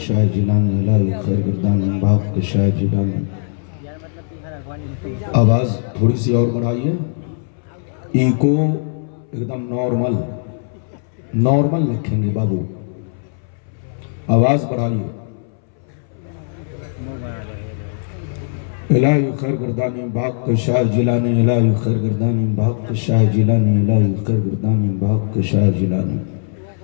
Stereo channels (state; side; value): silent; right; 64 dB below the other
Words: جلانی الہی خیر گردان بھاگ کشائے جلانی. آواز تھوڑی سی اور بڑھائیے. ایکو ایک دم نارمل لکھیں گے بابو. آواز بڑھائیے. الہی خیر گردانی بھاگ کشائے جلانی الہی خیر گردانی بھاگ کشائے جلانی الہی خیر گردانی بھاگ کشائے جلانی